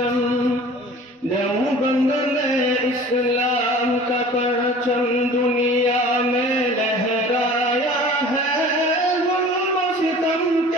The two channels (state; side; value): normal; both; correlation 0.44